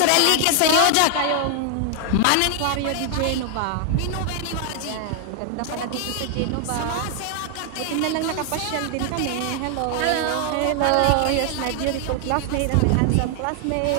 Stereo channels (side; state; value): both; different; correlation 0.00